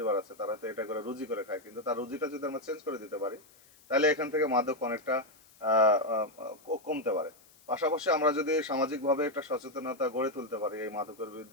আছে, তারা তো এটা করে রুজি করে খায়, কিন্তু তার রুজিটা যদি আমরা চেঞ্জ করে দিতে পারি তাহলে এখান থেকে মাদক অনেকটা কমতে পারে। পাশাপাশি আমরা যদি সামাজিকভাবে একটা সচেতনতা গড়ে তুলতে পারি এই মাদকের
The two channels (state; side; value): noise; left; hiss, 27 dB below the sound